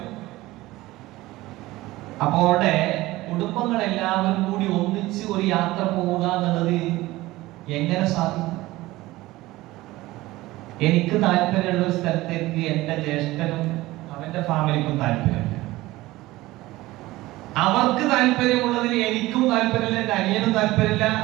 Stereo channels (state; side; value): quieter; left; 18.3 dB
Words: അപ്പോൾ അവിടെ കുടുംബങ്ങൾ എല്ലാവരും കൂടി ഒന്നിച്ച് ഒരു യാത്ര പോവുക എന്നുള്ളത് എങ്ങനെ സാധിക്കും? എനിക്ക് താല്പര്യമുള്ള ഒരു സ്ഥലത്തേക്ക് എന്റെ ജ്യേഷ്ഠനും അവന്റെ ഫാമിലിക്കും താല്പര്യമില്ല, അവർക്ക് താല്പര്യമുള്ളതിന് എനിക്കും താല്പര്യമില്ല, എന്റെ അനിയനും താല്പര്യമില്ല,